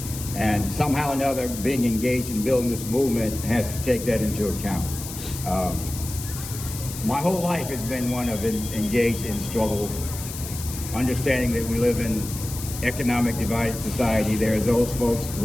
And somehow or another, being engaged in building this movement has to take that into account. My whole life has been one of engaged in struggle, understanding that we live in economic divided society. There are those folks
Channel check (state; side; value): noise; left; hiss, 10 dB below the sound